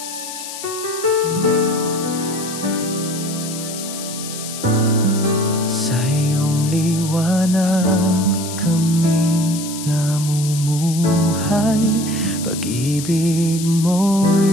iyong liwanag kami namumuhay, pag-ibig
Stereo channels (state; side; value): noise; left; hiss, 9 dB below the sound